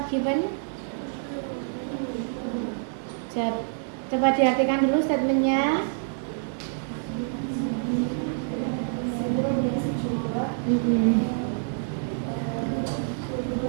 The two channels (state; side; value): silent; left; 60 dB below the other